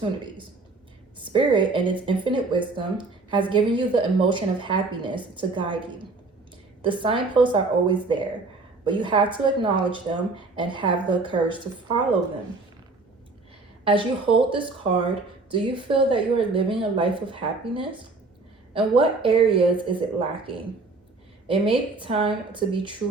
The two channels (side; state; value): left; quieter; 3.7 dB